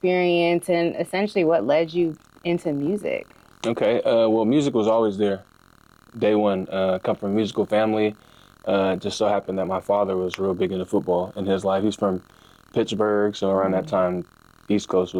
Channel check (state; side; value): identical; both; correlation 1.00